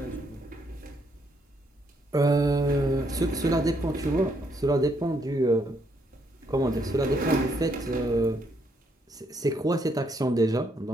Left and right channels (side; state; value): both; normal; correlation 0.73